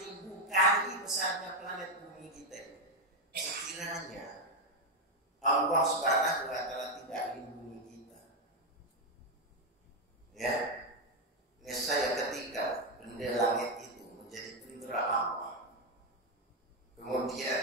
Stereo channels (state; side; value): normal; both; correlation 0.05